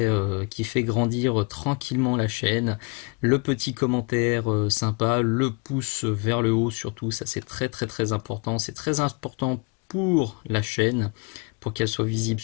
grandir tranquillement la chaîne. Le petit commentaire sympa, le pouce vers le haut surtout, ça c'est très très très important. C'est très important pour la chaîne, pour qu'elle soit visible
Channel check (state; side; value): quieter; right; 32.0 dB